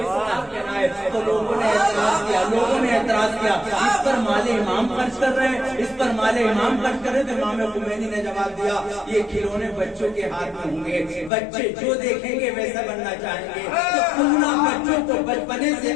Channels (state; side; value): drops out; right; at 11.3 s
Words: پہنائے. تو لوگوں نے اعتراض کیا اس پر مال امام خرچ کر رہے ہیں، اس پر مال امام خرچ کر رہے. تو امام خمینی نے جواب دیا یہ کھلونے بچوں کے ہاتھ میں ہوں گے، بچے جو دیکھیں گے ویسا بننا چاہیں گے. تو پورا بچوں کو بچپنے سے